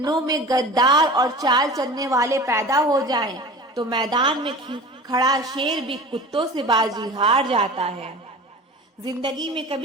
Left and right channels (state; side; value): normal; both; correlation 0.37